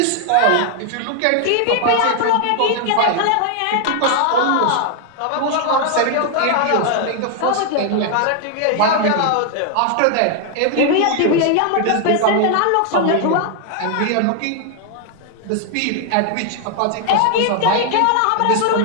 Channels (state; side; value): different; both; correlation 0.00